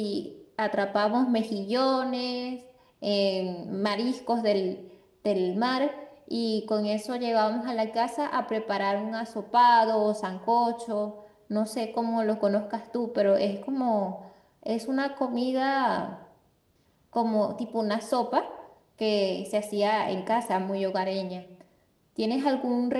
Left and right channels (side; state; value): both; identical; correlation 1.00